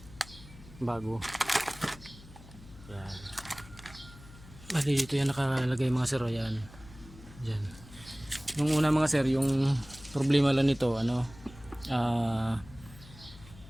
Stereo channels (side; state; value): left; noise; hum, 19 dB below the sound